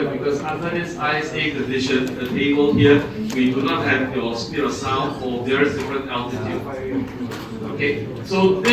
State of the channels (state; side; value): identical; both; correlation 1.00